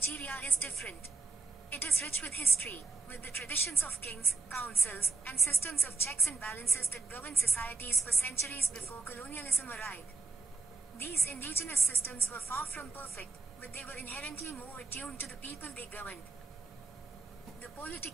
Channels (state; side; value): quieter; left; 4.1 dB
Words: is different. It is rich with history, with the traditions of kings, councils, and systems of checks and balances that governed societies for centuries before colonialism arrived. These indigenous systems were far from perfect, but they were inherently more attuned to the people they governed. The